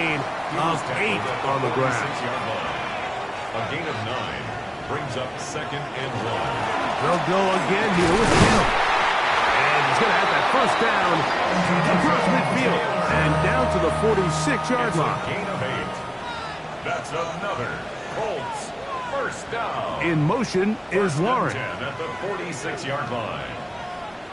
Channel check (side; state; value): both; identical; correlation 1.00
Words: of 8 on the ground. A gain of 9 brings up 2nd and 1. They'll go again here with Taylor. And he's going to have that first down across midfield and down to the 46-yard line. Gain of 8. That's another Colts first down. In motion is Warren. 10 at the 46-yard line.